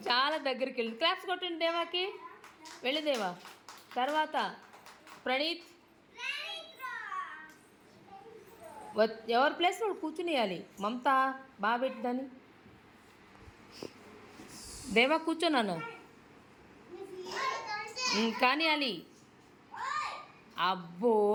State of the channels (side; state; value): both; identical; correlation 1.00